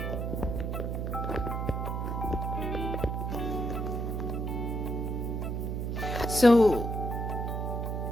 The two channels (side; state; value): right; noise; hum, 1 dB below the sound